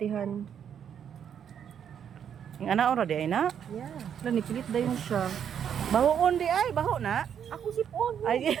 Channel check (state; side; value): quieter; left; 8.5 dB